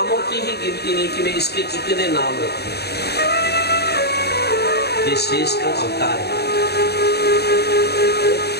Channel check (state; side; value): late; right; 0.47 ms